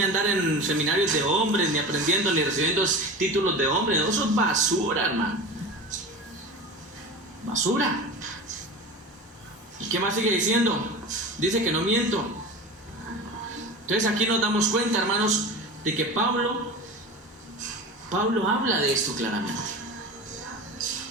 a andar en seminarios de hombres, ni aprendiendo, ni recibiendo títulos de hombres. Eso es basura, hermano. Basura. ¿Y qué más sigue diciendo? Dice que no miento. Entonces aquí nos damos cuenta, hermanos, de que Pablo habla de esto claramente.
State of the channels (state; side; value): normal; both; correlation 0.31